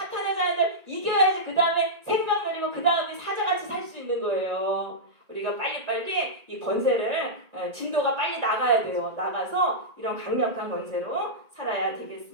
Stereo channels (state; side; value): late; left; 1.9 ms